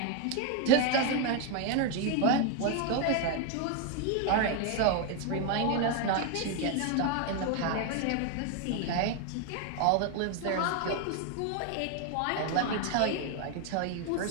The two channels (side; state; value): both; different; correlation 0.01